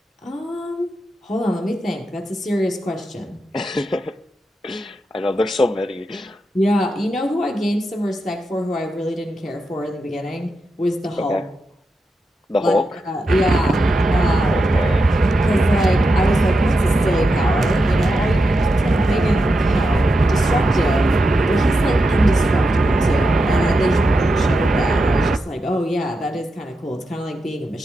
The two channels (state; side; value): normal; both; correlation 0.87